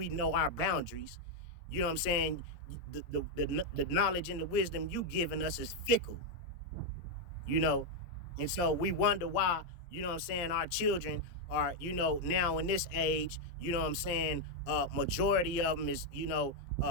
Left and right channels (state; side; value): late; right; 17 ms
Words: know our boundaries. You know what I'm saying? The knowledge and the wisdom you giving us is fickle. And so we wonder why, what I'm saying, our children are, now in this age, what I'm saying, majority of them is,